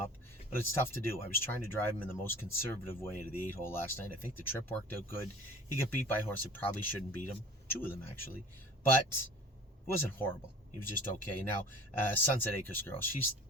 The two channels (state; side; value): normal; both; correlation 0.44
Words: but it's tough to do. I was trying to drive him in the most conservative way out of the 8 hole last night. I think the trip worked out good. He got beat by a horse that probably shouldn't beat him. 2 of them, actually. But it wasn't horrible. He was just okay. Now, Sunset Acres girl, she's